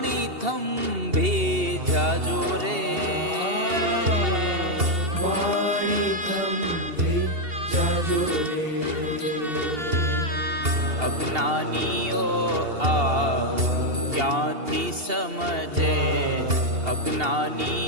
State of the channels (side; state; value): left; late; 2.8 ms